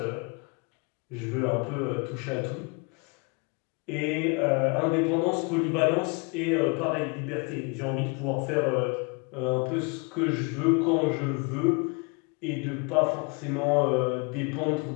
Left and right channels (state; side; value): quieter; right; 31.7 dB